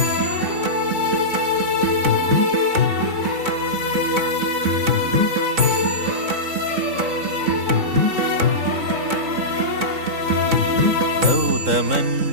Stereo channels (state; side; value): late; left; 3.8 ms